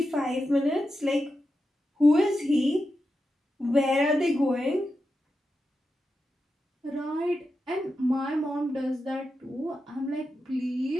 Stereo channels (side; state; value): both; normal; correlation 0.89